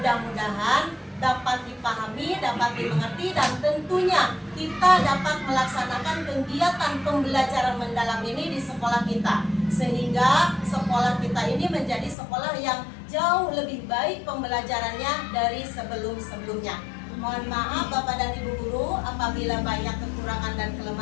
dapat dipahami, dapat dimengerti, dan tentunya kita dapat melaksanakan kegiatan pembelajaran mendalam ini di sekolah kita, sehingga sekolah kita ini menjadi sekolah yang jauh lebih baik pembelajarannya dari sebelum-sebelumnya. Mohon maaf Bapak dan Ibu guru apabila banyak kekurangan dan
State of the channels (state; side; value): drops out; right; at 12.2 s